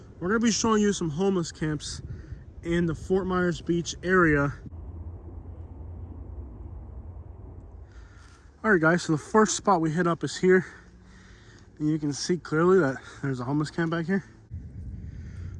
we're going to be showing you some homeless camps in the Fort Myers Beach area. Alright guys, so the first spot we hit up is here. And you can see clearly that there's a homeless camp back here.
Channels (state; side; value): identical; both; correlation 1.00